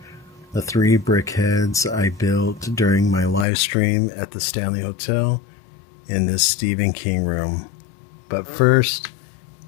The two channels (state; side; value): drops out; right; at 3.5 s